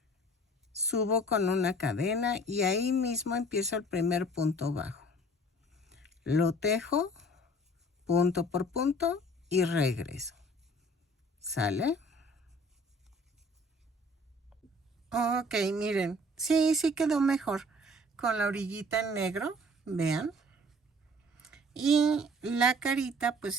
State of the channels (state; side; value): normal; both; correlation 0.51